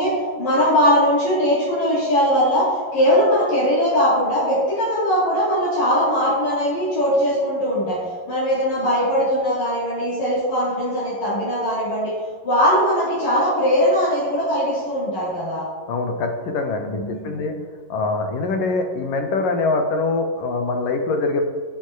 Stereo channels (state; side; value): late; right; 11 ms